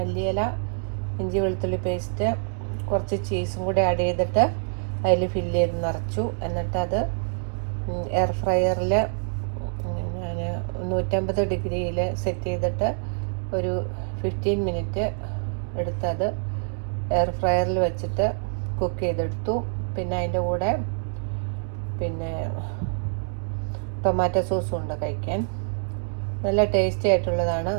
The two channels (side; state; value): left; silent; digital silence